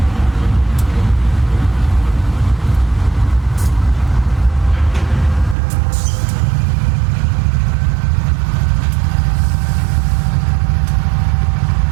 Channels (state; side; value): drops out; left; at 5.6 s